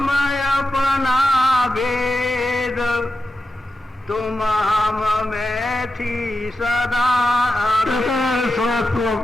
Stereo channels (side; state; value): both; normal; correlation 0.91